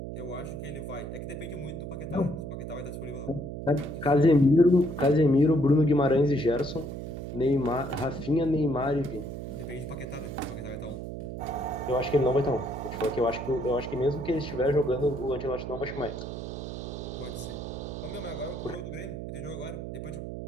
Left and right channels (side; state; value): right; noise; hum, 7 dB below the sound